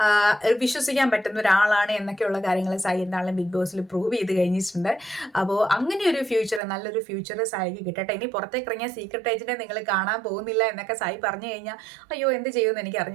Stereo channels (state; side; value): drops out; left; at 6.6 s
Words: വിശ്വസിക്കാൻ പറ്റുന്ന ഒരാളാണ് എന്നൊക്കെയുള്ള കാര്യങ്ങൾ സായി എന്താണെങ്കിലും ബിഗ് ബോസിൽ പ്രൂവ് ചെയ്ത് കഴിഞ്ഞിട്ടുണ്ട്. അപ്പോൾ അങ്ങനെ ഒരു ഫ്യൂച്ചർ, നല്ലൊരു ഫ്യൂച്ചർ സായിക്ക് കിട്ടട്ടെ. ഇനി പുറത്തേക്ക് ഇറങ്ങിയ സീക്രട്ട് ഏജന്റിനെ നിങ്ങൾ കാണാൻ പോകുന്നില്ല എന്നൊക്കെ സായി പറഞ്ഞു കഴിഞ്ഞാൽ അയ്യോ എന്ത് ചെയ്യുമെന്ന് എനിക്ക്